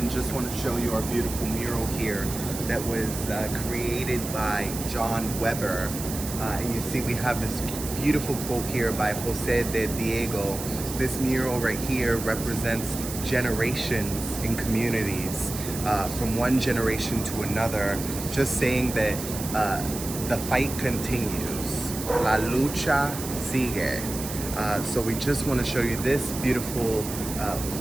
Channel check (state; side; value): noise; right; hiss, 8 dB below the sound